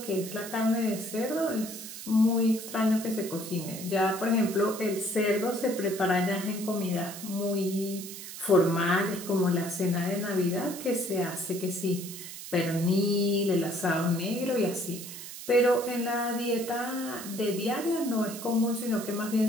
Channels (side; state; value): right; noise; hiss, 11 dB below the sound